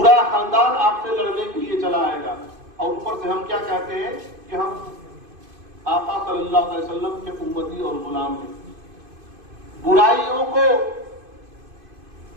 خاندان آپ سے لڑنے کے لیے چلا آئے گا. اور اوپر سے ہم کیا کہتے ہیں کہ ہم آقا صلی اللہ علیہ وسلم کے امتی اور غلام ہیں. برائیوں کو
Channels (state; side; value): late; left; 2.5 ms